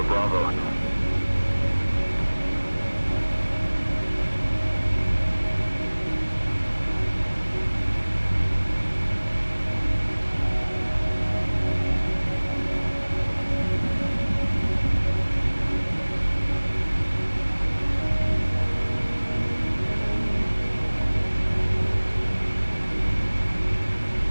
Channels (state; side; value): inverted; both; correlation -1.00